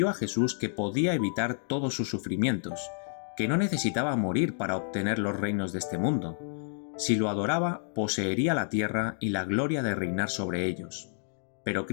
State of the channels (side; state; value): right; silent; digital silence